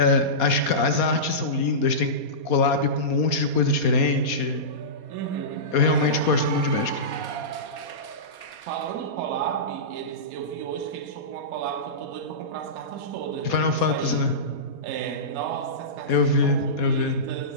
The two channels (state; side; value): late; right; 4.2 ms